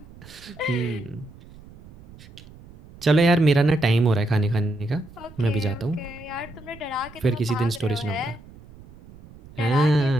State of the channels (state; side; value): noise; right; rumble, 21 dB below the sound